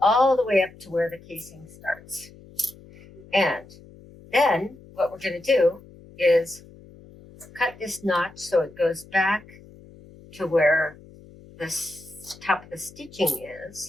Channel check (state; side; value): noise; left; hum, 22 dB below the sound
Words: the way up to where the casing starts. And then what we're going to do is cut this notch so it goes back to where the top of the stitching